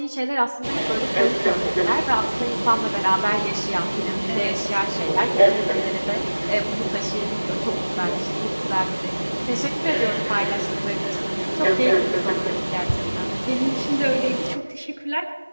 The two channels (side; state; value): both; inverted; correlation -1.00